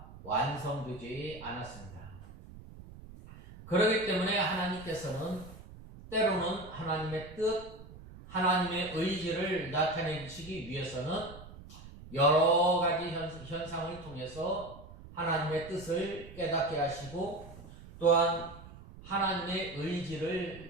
완성되지 않았습니다. 그렇기 때문에 하나님께서는 때로는 하나님의 뜻, 하나님의 의지를 나타내시기 위해서는 여러 가지 현상을 통해서 하나님의 뜻을 깨닫게 하시고, 또한 하나님의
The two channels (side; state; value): right; noise; rumble, 17 dB below the sound